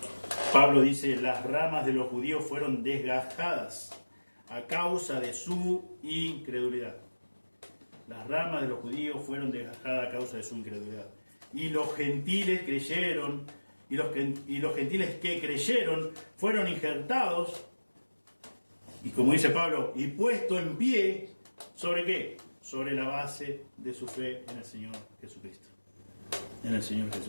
Pablo dice, las ramas de los judíos fueron desgajadas a causa de su incredulidad. Las ramas de los judíos fueron desgajadas a causa de su incredulidad. Y los gentiles creyeron, y los gentiles que creyeron fueron injertados, y como dice Pablo, y puesto en pie, ¿sobre qué? Sobre la base de su fe en el Señor Jesucristo. En el Señor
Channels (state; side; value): inverted; both; correlation -1.00